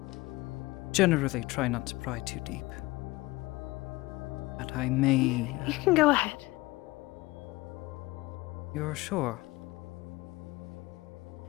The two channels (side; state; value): right; quieter; 20.6 dB